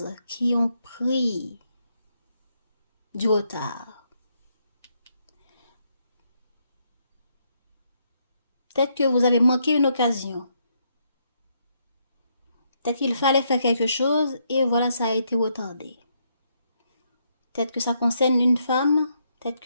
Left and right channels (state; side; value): inverted; both; correlation -0.76